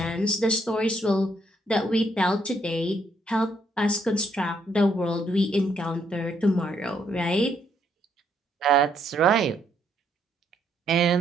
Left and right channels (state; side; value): normal; both; correlation 0.72